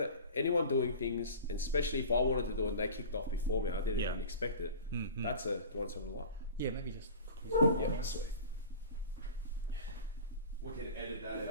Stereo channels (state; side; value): inverted; both; correlation -0.37